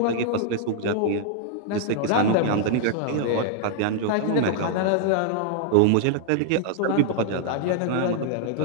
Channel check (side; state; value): both; different; correlation 0.00